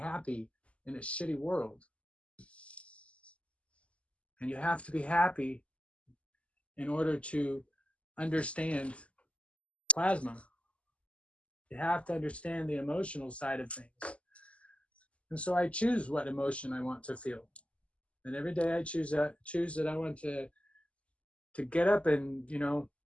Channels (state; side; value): late; right; 0.060 ms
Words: in a shitty world. And you have to be happy in order to understand plasma. You have to understand the emotional side of things. And so I choose what emotion I want to feel. And every day I choose that I want to get up and, you know,